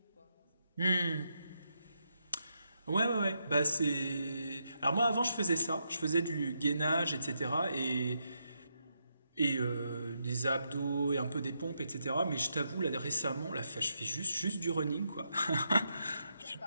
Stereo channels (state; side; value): inverted; both; correlation -0.81